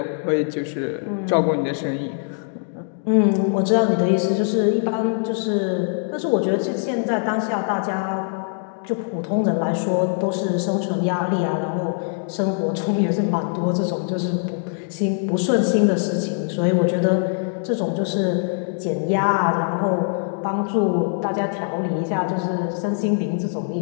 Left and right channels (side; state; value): right; silent; digital silence